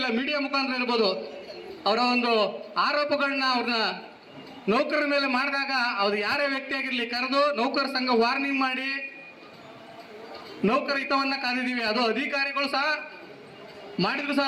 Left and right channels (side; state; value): both; identical; correlation 1.00